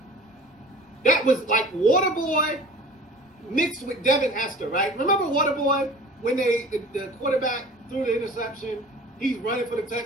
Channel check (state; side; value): normal; both; correlation 0.43